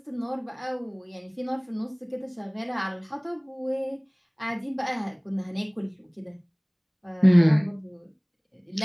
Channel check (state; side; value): identical; both; correlation 1.00